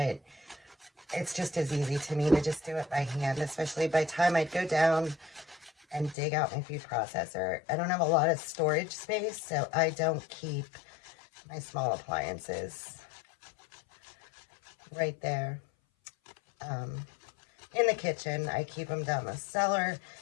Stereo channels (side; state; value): right; drops out; at 6.2 s